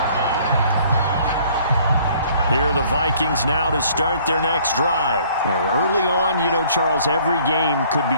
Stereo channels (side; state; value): both; inverted; correlation -0.58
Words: Here are the Vikings now to start their next drive. Early on, Charles, every game could